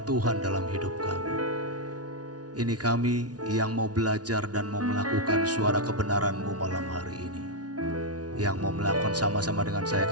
Tuhan dalam hidup kami. Ini kami yang mau belajar dan mau melakukan suara kebenaran-Mu malam hari ini. Yang mau melakukan sama-sama dengan saya,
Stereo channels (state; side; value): late; left; 0.69 ms